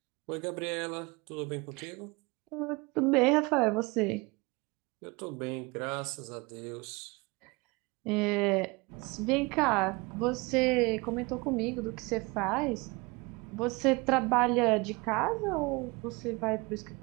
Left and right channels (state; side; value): quieter; left; 26.0 dB